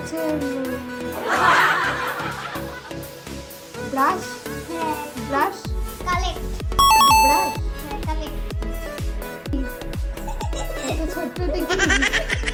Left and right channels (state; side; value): identical; both; correlation 1.00